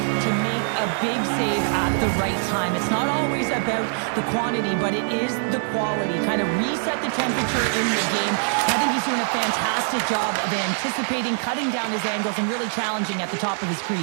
make a big save at the right time. It's not always about the quantity, but it is the quality. Kind of reset the temperature in the game. I think he's doing a fantastic job of anticipating, cutting down his angles, and really challenging at the top of his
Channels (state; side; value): silent; left; 63 dB below the other